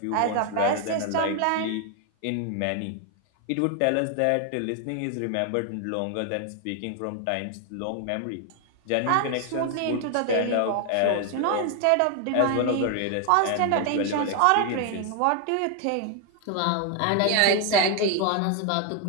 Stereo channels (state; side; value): different; both; correlation 0.00